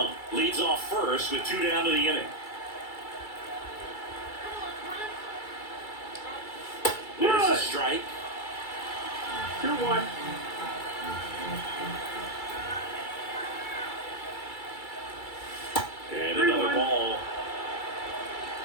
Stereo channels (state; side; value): late; right; 2.3 ms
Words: leads off first with 2 down to the inning. There's a strike. 2-1. And another ball.